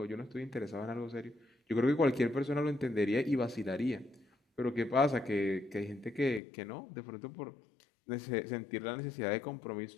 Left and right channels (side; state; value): right; drops out; at 6.4 s